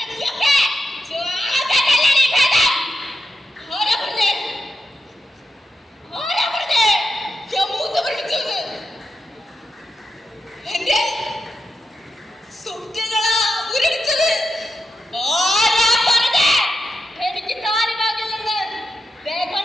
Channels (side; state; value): both; normal; correlation 0.87